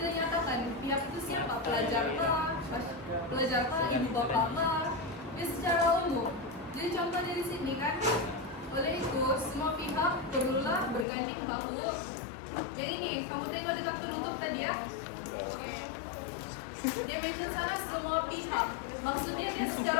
nyatakan pihak itu siapa, pelajar kah, ibu bapak kah, dia secara umum. Jadi contoh dari sini kan, oleh itu semua pihak perlulah berganding bahu. Yang ini, kamu tengok dekat penutup tadi ya. Dia mention sana semua pihak. Maksudnya dia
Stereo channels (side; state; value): right; drops out; at 11.1 s